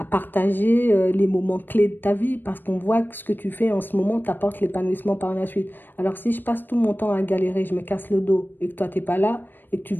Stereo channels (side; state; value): right; late; 0.093 ms